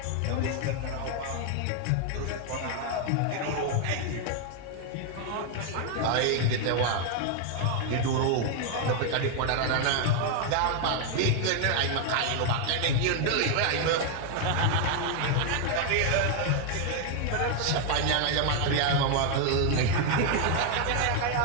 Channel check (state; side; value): different; both; correlation 0.00